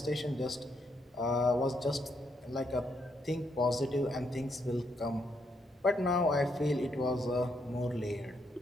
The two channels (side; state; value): both; normal; correlation 0.76